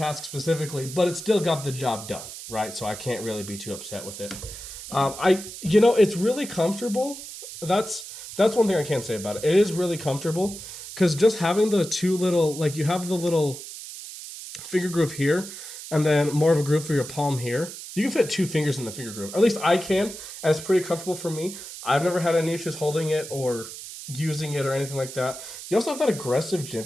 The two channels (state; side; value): noise; right; hiss, 11 dB below the sound